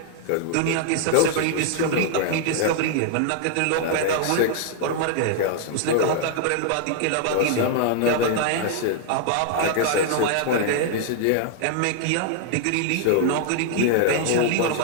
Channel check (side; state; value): both; different; correlation 0.00